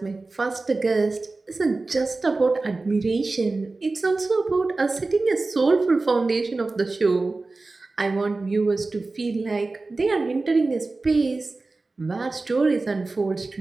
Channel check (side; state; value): left; quieter; 3.5 dB